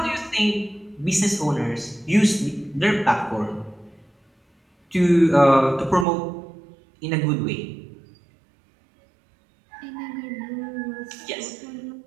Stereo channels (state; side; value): drops out; left; at 6.1 s